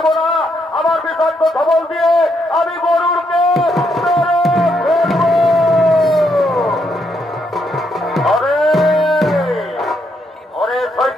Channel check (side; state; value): both; normal; correlation 0.76